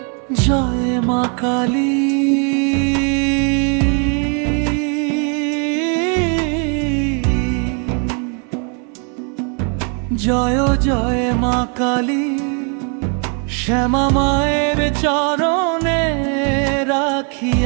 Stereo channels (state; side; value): quieter; left; 39.1 dB